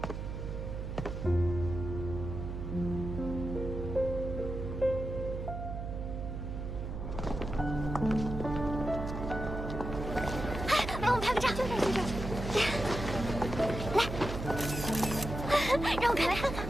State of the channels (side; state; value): right; noise; hum, 5 dB below the sound